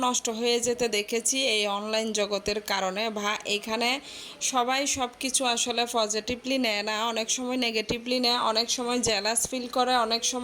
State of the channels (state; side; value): identical; both; correlation 1.00